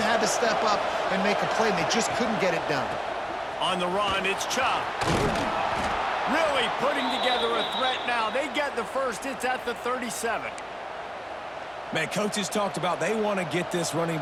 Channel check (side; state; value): both; identical; correlation 1.00